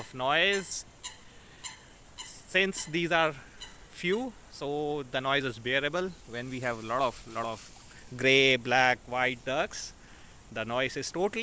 noise. Since these are few, so the noise is bearable. When we have a lot of gray, black, white ducks, the noise is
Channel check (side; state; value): both; identical; correlation 1.00